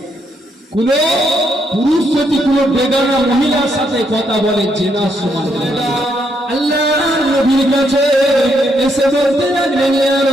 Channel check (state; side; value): normal; both; correlation 0.76